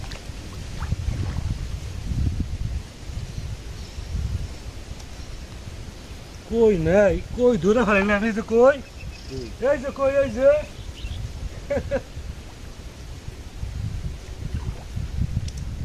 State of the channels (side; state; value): both; identical; correlation 1.00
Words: কই নাই, কই ধরে ফেলে না। এই যে কই, এই যে কই, এই যে